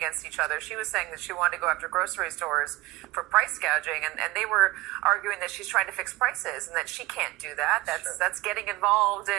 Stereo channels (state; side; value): quieter; left; 19.7 dB